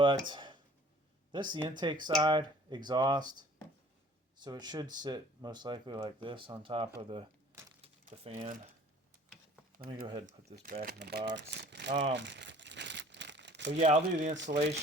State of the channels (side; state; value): both; normal; correlation 0.51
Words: this is the intake side, exhaust. So it should sit most likely like this on top of the fan. Let me go ahead and put this back in the box. So yeah, I'll do the